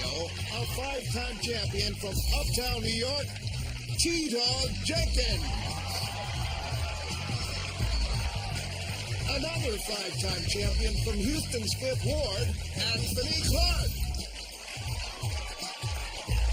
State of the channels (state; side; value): identical; both; correlation 1.00